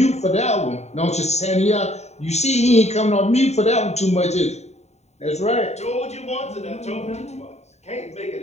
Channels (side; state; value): right; late; 0.32 ms